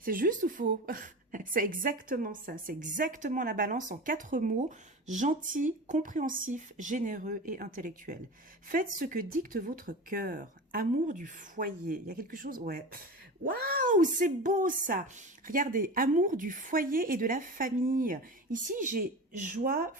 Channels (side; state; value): both; normal; correlation 0.30